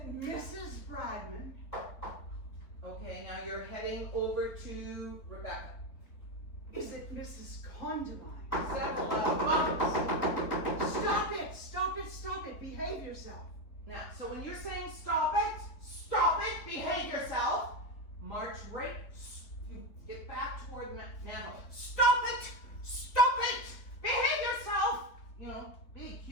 Mrs. Bradman? Okay, now you're heading over to Rebecca. Is it Mrs. Condamine? Settle down. Stop it, behave yourself. Now, so when you're saying stop it, behave yourself, march right, you get back toward the mantle. Stop it, behave yourself. You know, big,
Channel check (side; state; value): right; late; 3.8 ms